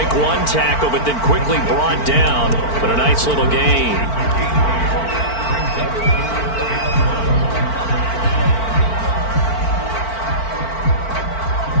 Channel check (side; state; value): right; late; 4.5 ms